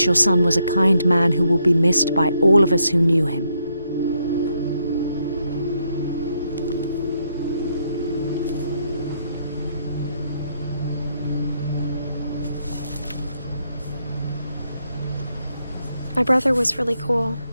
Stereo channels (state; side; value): inverted; both; correlation -0.77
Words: your son was a kind man who will be missed by all of us who knew him. My brother was really cool.